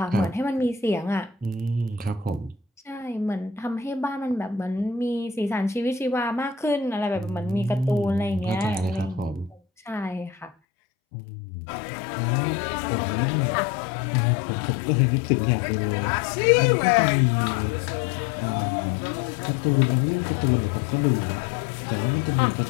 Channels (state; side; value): drops out; right; at 10.5 s